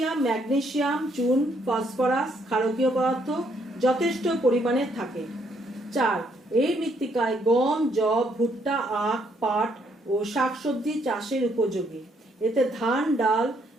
ম্যাগনেসিয়াম, চুন, ফসফরাস, ক্ষারকীয় পদার্থ যথেষ্ট পরিমাণে থাকে। 4. এই মৃত্তিকায় গম, যব, ভুট্টা, আখ, পাট ও শাকসবজি চাষের উপযোগী। এতে ধান, ডাল,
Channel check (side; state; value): both; normal; correlation 0.71